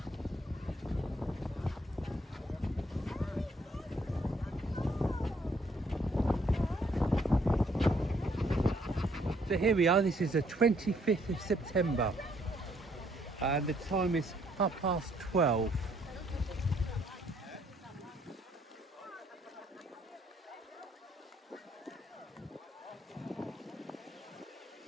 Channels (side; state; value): both; normal; correlation 0.67